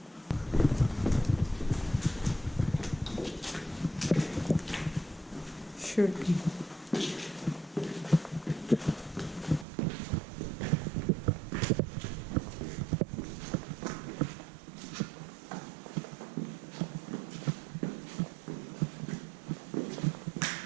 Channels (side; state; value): left; drops out; at 9.7 s